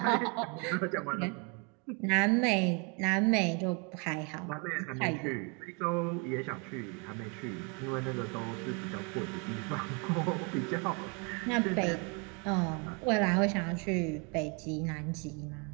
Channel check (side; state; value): left; quieter; 33.4 dB